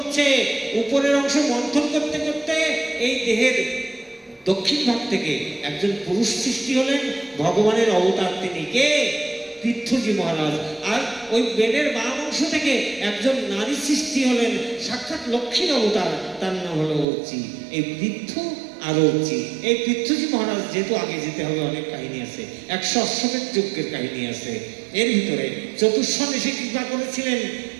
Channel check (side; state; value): left; drops out; at 17.1 s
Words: উপরের অংশ মন্থন করতে করতে এই দেহের দক্ষিণ ভাগ থেকে একজন পুরুষ সৃষ্টি হলেন, ভগবানের অবতার। তিনি কে? পৃথ্বীজি মহারাজ। আর ওই বেনের বাম অংশ থেকে একজন নারী সৃষ্টি হলেন, সাক্ষাৎ লক্ষ্মীর অবতার, তার নাম হলো অর্চি। এই পৃথ্বী আর অর্চি, এই পৃথ্বীজি মহারাজ, যেহেতু আগে যেতে হবে, অনেক কাহিনী আছে, 100 অশ্বমেধ যজ্ঞের কাহিনী আছে এর ভিতরে। চতুর্শন এসে কৃপা করেছিলেন,